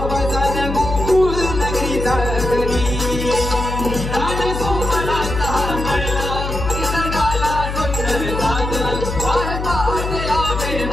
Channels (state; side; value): noise; left; hum, 5 dB below the sound